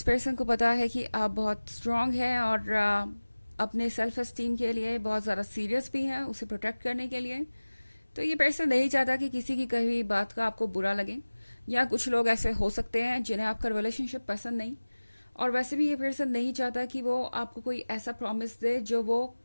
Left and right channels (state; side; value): inverted; both; correlation -1.00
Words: पर्सन को पता है कि आप बहुत स्ट्रांग हैं और अपने सेल्फ एस्टीम के लिए बहुत ज़्यादा सीरियस भी हैं उसे प्रोटेक्ट करने के लिए। तो ये पर्सन नहीं चाहता कि किसी की कही हुई बात का आपको बुरा लगे, या कुछ लोग ऐसे हो सकते हैं जिन्हें आपका रिलेशनशिप पसंद नहीं, और वैसे भी ये पर्सन नहीं चाहता कि वो आपको कोई ऐसा प्रॉमिस दे जो वो